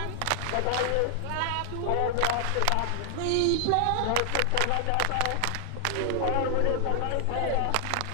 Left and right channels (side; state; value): both; different; correlation 0.00